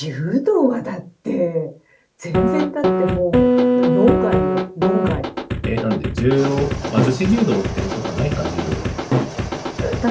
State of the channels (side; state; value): both; identical; correlation 1.00